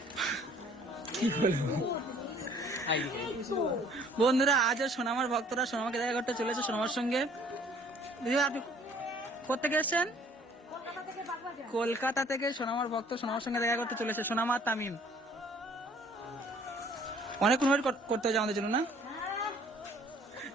কি বলবো বন্ধুরা, আজও সোনামার ভক্তরা সোনামাকে দেখা করতে চলেছে সোনামার সঙ্গে। দিদি আপনি কোথেকে এসেছেন? কলকাতা থেকে বাগবাজার। কলকাতা থেকে সোনামার ভক্ত সোনামার সঙ্গে দেখা করতে চলেছে। সোনামা আর তামিম অনেক অনুভব করতে হবে আমাদের জন্য না?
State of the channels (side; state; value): both; normal; correlation 0.56